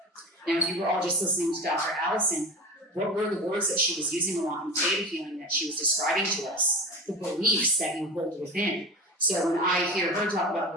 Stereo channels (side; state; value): both; normal; correlation 0.29